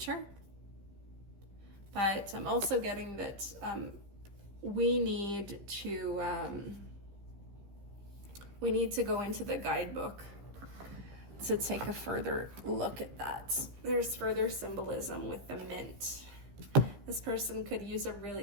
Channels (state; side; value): late; left; 15 ms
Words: But I'm also getting that we need to go into the guidebook to take a further look at that. There's further symbolism with the mint. This person could use a